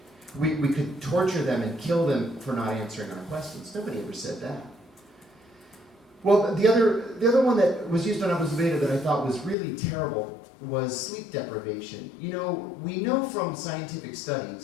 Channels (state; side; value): drops out; right; at 9.6 s